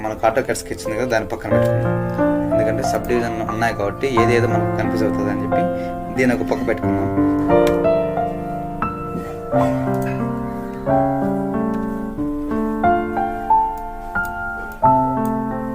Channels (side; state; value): both; identical; correlation 1.00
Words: మనకు ఆటో క్యాడ్ స్కెచ్ ఉంది కదా, దాని పక్కన పెట్టుకున్నాం. ఎందుకంటే సబ్ డివిజన్ ఉన్నాయి కాబట్టి ఏదేదో మనకు కన్ఫ్యూజ్ అవుతుంది అని చెప్పి దీని ఒక పక్క పెట్టుకున్నాం.